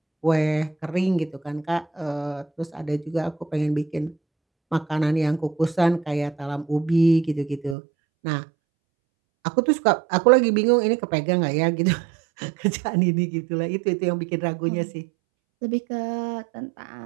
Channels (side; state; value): left; drops out; at 7.8 s